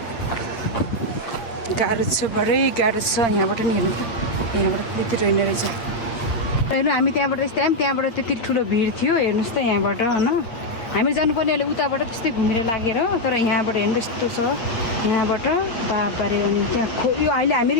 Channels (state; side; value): late; right; 8.6 ms